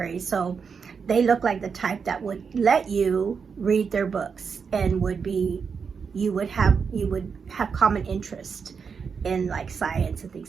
so they look like the type that would let you read their books, and you would have common interest in like science and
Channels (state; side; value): quieter; left; 5.9 dB